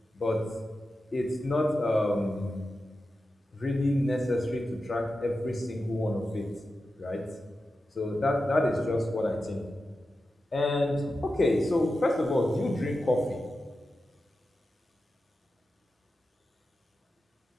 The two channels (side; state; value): both; normal; correlation 0.91